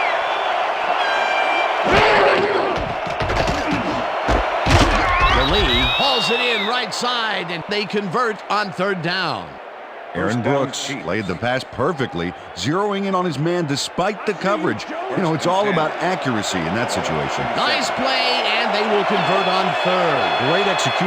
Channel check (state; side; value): identical; both; correlation 1.00